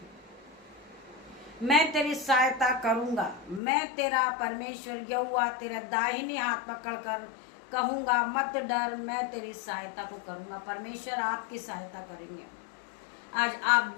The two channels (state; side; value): drops out; right; at 3.6 s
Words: मैं तेरी सहायता करूंगा। मैं तेरा परमेश्वर यहोवा तेरा दाहिनी हाथ पकड़कर कहूंगा, मत डर, मैं तेरी सहायता को करूंगा। परमेश्वर आपकी सहायता करेंगे। आज आप